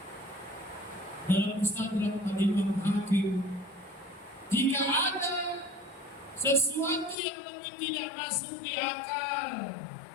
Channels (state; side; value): drops out; right; at 7.2 s